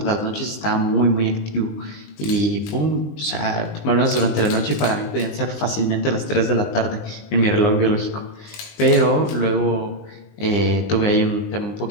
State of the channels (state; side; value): late; right; 20 ms